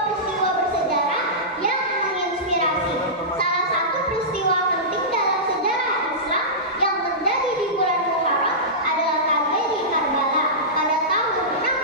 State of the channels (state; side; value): normal; both; correlation -0.17